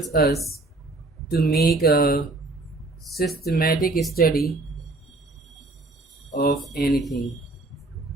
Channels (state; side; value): quieter; left; 3.0 dB